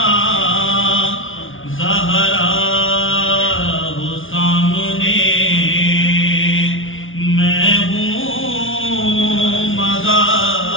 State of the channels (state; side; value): late; right; 0.57 ms